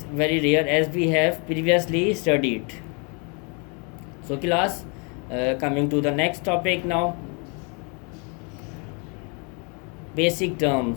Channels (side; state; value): right; quieter; 34.8 dB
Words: very rare as we have previously studied. So class, coming to the next topic now. Basic